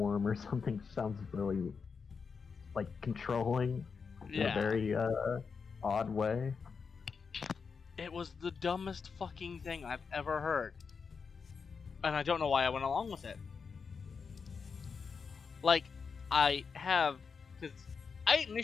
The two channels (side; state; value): right; quieter; 5.6 dB